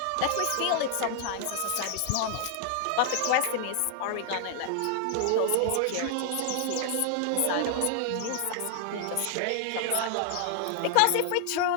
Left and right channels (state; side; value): different; both; correlation 0.00